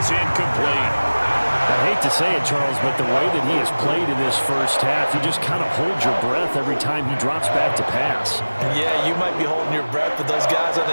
incomplete. I hate to say it, Charles, but the way that he has played in this first half, you just kind of hold your breath every time he drops back to pass. Yeah, you might be holding your breath, but those guys on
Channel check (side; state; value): both; inverted; correlation -1.00